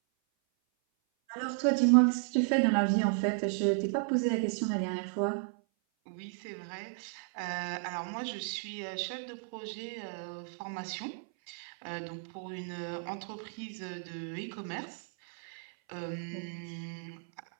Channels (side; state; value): left; silent; 55 dB below the other